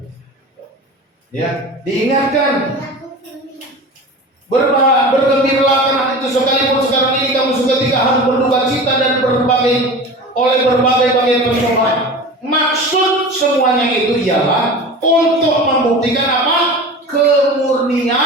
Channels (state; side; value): normal; both; correlation 0.34